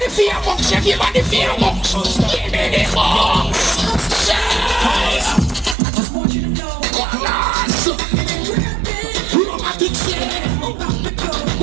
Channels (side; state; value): left; drops out; at 5.8 s